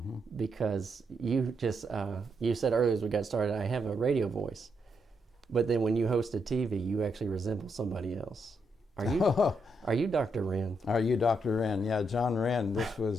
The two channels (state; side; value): normal; both; correlation 0.79